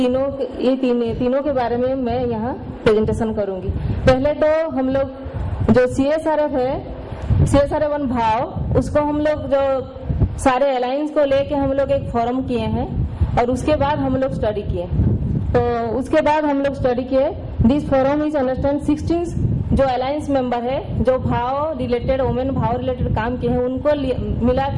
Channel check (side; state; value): both; identical; correlation 1.00